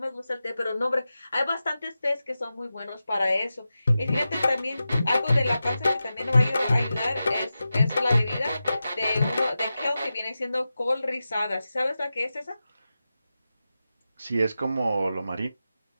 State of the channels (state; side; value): inverted; both; correlation -0.93